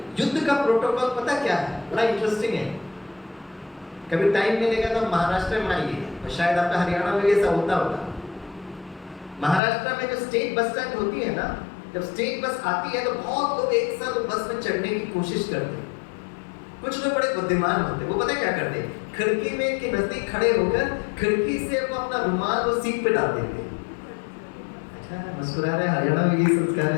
युद्ध का प्रोटोकॉल पता क्या है? बड़ा इंटरेस्टिंग है। कभी टाइम मिलेगा तो महाराष्ट्र में आइए, और शायद आपका हरियाणा में ऐसा होता होगा। महाराष्ट्र में जो स्टेट बस स्टैंड होती है ना, जब स्टेट बस आती है तो बहुत लोग एक साथ बस में चढ़ने की कोशिश करते हैं। कुछ लोग बड़े बुद्धिमान होते हैं, वो पता क्या करते हैं? खिड़की में के नजदीक खड़े होकर खिड़की से वो अपना रुमाल वो सीट पे डाल देते हैं। अच्छा, मुस्कुरा रहे, हरियाणा में ये संस्कार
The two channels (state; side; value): drops out; right; at 9.6 s